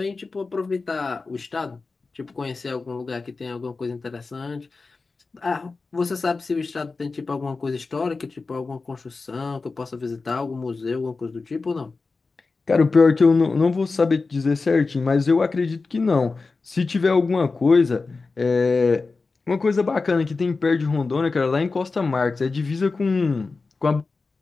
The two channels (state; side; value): quieter; right; 4.0 dB